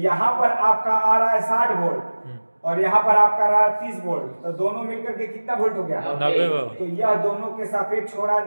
पर आपका आ रहा है 60 वोल्ट और यहाँ पर आपका आ रहा है 30 वोल्ट, तो दोनों मिलकर के कितना वोल्ट हो गया? 90 वोल्ट। तो यह दोनों के सापेक्ष हो रहा है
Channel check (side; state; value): both; inverted; correlation -1.00